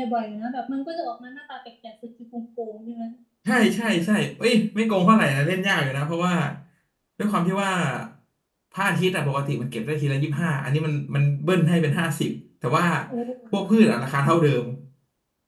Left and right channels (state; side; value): identical; both; correlation 1.00